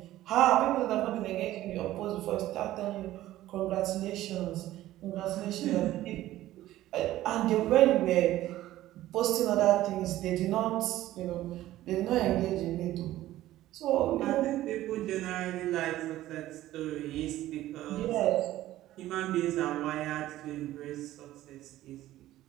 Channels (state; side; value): quieter; left; 14.8 dB